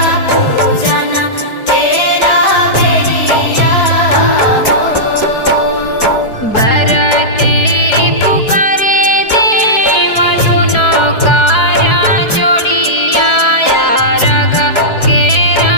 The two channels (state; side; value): late; right; 4.7 ms